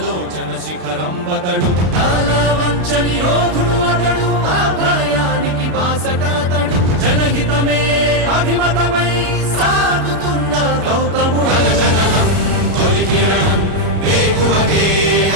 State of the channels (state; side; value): late; left; 33 ms